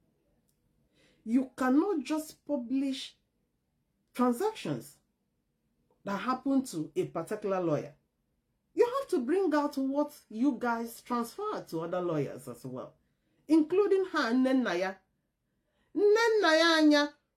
You cannot just publish transactions that happen to a particular lawyer. You have to bring out what you guys transfer to other lawyers as well, including her, Nnenaya. Nnenaya,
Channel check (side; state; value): both; identical; correlation 1.00